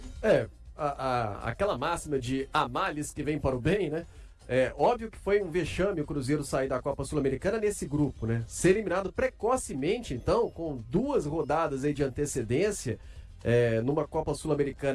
Aquela máxima de há males que vem para o bem, né? É óbvio que foi um vexame o Cruzeiro sair da Copa Sul-Americana nesse grupo, né? Ser eliminado precocemente, então, com 2 rodadas aí de antecedência, numa Copa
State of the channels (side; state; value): both; identical; correlation 1.00